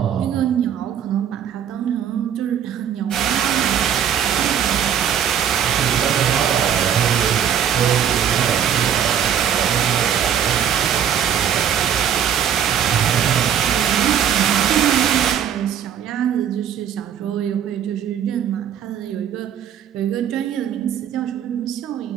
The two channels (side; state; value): left; quieter; 9.0 dB